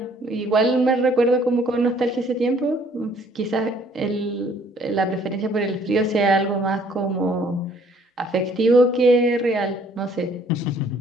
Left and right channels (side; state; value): both; normal; correlation 0.60